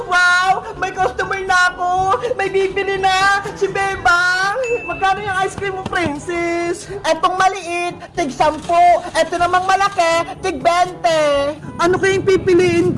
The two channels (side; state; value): both; identical; correlation 1.00